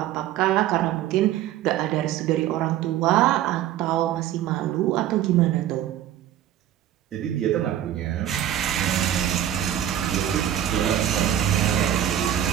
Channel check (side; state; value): left; quieter; 11.5 dB